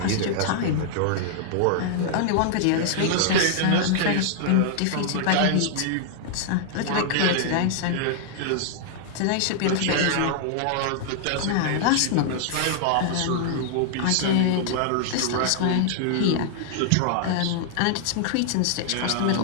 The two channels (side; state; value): both; different; correlation -0.01